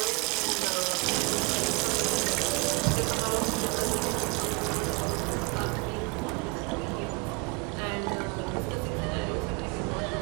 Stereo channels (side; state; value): left; quieter; 28.9 dB